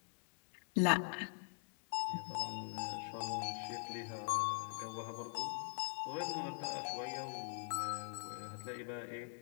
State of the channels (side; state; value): right; silent; digital silence